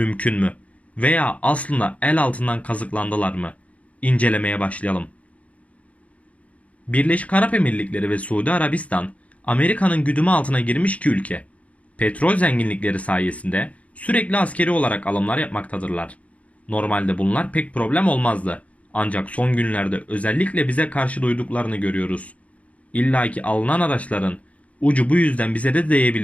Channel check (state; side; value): late; right; 0.066 ms